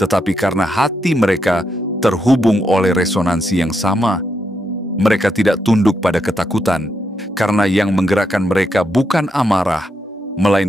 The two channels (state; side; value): normal; both; correlation 0.81